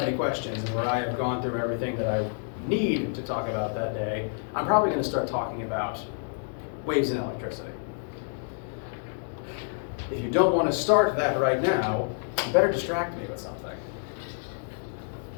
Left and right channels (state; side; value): silent; right; digital silence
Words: any questions and where I have gone through everything that I need to talk about that day, I'm probably going to start talking about waves and electricity. If you don't want to start that right now, you better distract me with something.